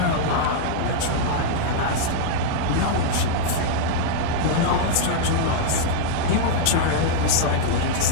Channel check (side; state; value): both; different; correlation -0.01